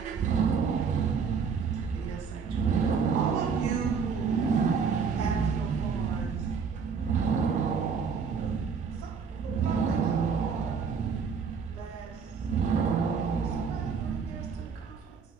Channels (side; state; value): left; quieter; 5.9 dB